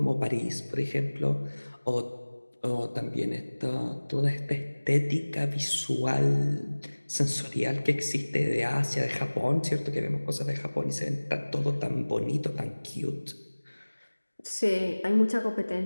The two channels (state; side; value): inverted; both; correlation -1.00